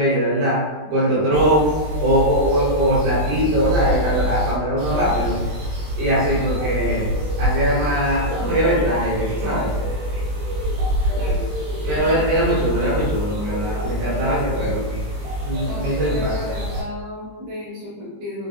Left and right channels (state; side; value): late; left; 20 ms